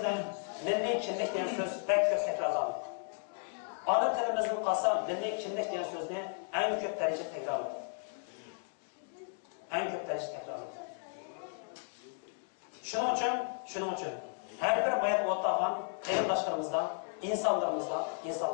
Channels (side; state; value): right; silent; 55 dB below the other